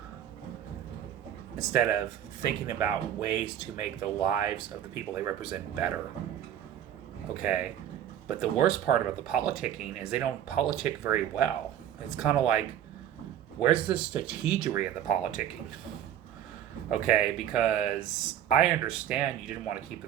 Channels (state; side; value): quieter; left; 10.5 dB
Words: instead of thinking about ways to make the lives of the people they represent better. Okay? But the worst part about the politicking is they don't politic very well. It's kind of like, where's the strategery in the politicking? Okay? Because I understand you didn't want to keep the